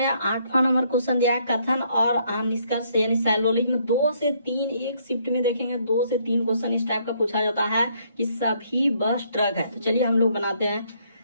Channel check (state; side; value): inverted; both; correlation -0.69